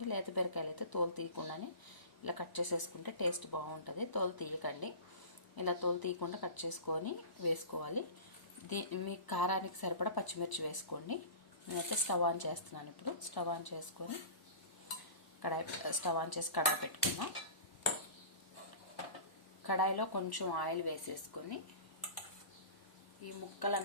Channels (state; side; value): late; right; 1.0 ms